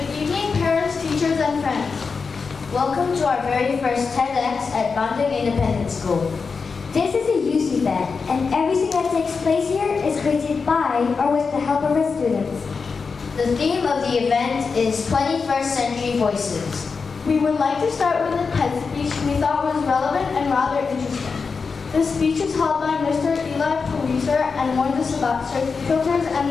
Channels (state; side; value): quieter; right; 5.0 dB